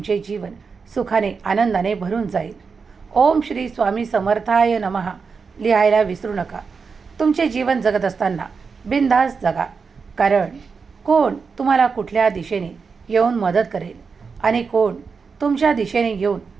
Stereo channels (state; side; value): quieter; left; 5.2 dB